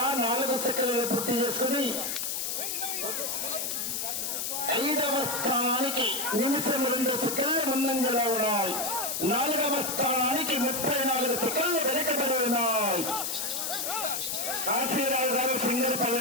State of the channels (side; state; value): left; noise; hiss, 2 dB below the sound